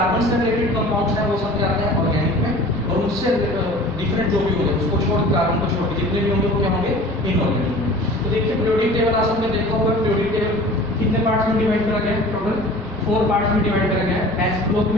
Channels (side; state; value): both; normal; correlation 0.43